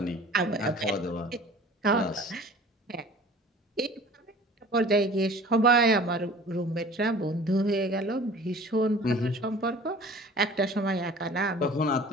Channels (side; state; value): both; normal; correlation 0.46